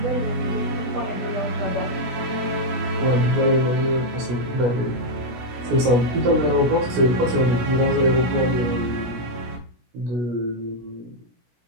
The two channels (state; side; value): late; left; 17 ms